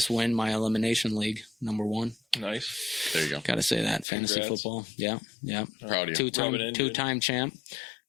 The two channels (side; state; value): right; drops out; at 4.0 s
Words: win my elimination league, #1. Nice. There you go. Got to say that. Fantasy football. Yeah. Proud of you. Two-time champ.